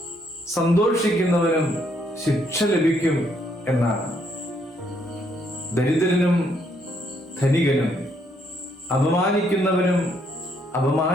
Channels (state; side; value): normal; both; correlation 0.71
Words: സന്തോഷിക്കുന്നവനും ശിക്ഷ ലഭിക്കും എന്നാണ്. ദരിദ്രനും ധനികനും, അപമാനിക്കുന്നവനും